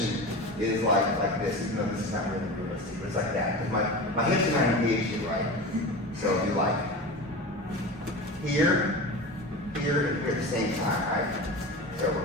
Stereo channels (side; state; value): both; normal; correlation 0.30